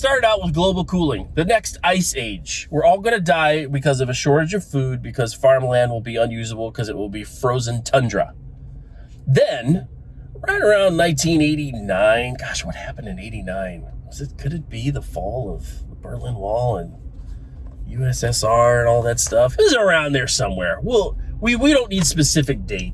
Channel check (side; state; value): both; identical; correlation 1.00